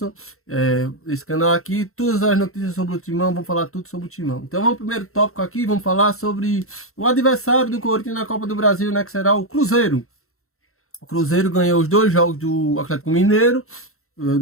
esse canal aqui, todas as notícias sobre o Timão, vamos falar tudo sobre o Timão. Então vamos pro primeiro tópico aqui, vamos falar sobre o adversário do Corinthians na Copa do Brasil, né, que será o Cruzeiro. O Cruzeiro ganhou os 2 jogos do Atlético Mineiro.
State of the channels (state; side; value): late; right; 0.63 ms